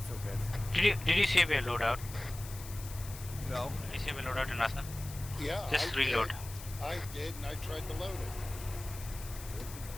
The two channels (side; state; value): left; noise; hiss, 14 dB below the sound